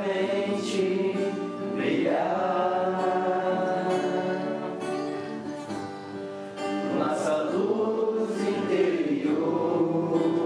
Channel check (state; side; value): identical; both; correlation 1.00